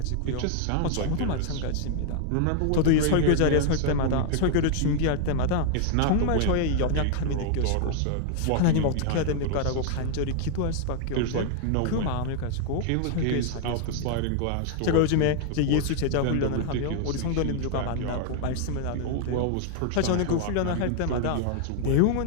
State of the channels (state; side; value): different; both; correlation 0.00